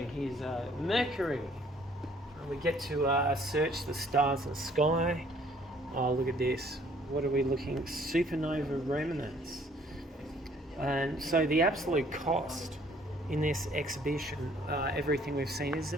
here's Mercury. We get to search the stars in the sky. Oh, look at this. What are we looking? Supernova remnants. And so the absolute cost in this exhibition, everything we've seen, is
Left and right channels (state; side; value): normal; both; correlation 0.60